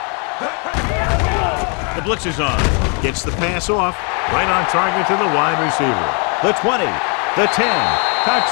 The blitz is on. Gets the pass off. Right on target to the wide receiver. The 20, the 10.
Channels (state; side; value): quieter; right; 36.5 dB